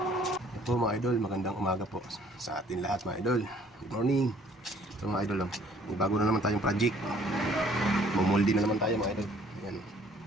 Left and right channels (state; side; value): normal; both; correlation 0.58